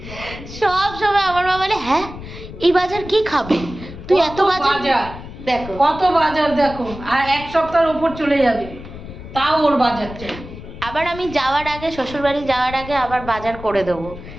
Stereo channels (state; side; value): noise; left; rumble, 13 dB below the sound